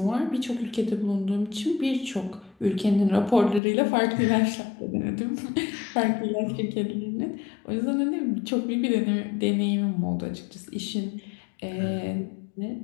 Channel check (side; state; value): right; drops out; at 3.6 s